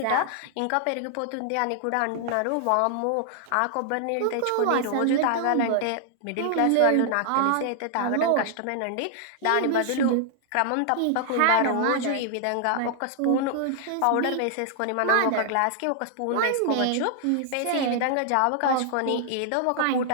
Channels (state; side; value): different; both; correlation 0.00